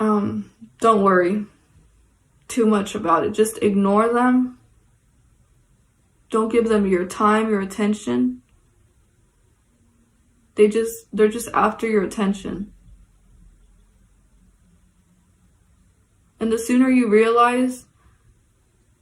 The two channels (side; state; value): both; identical; correlation 1.00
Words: worry too much about it. Just ignore them. Don't give them your time, your attention. They're just after your attention. And the sooner you realize